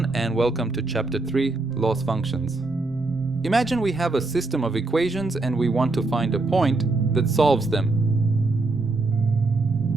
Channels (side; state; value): left; quieter; 3.3 dB